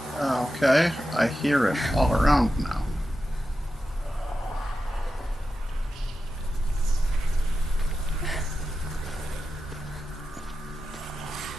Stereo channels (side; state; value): both; normal; correlation 0.91